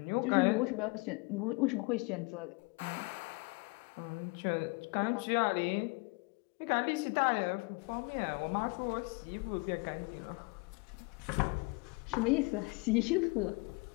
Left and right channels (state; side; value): quieter; right; 28.7 dB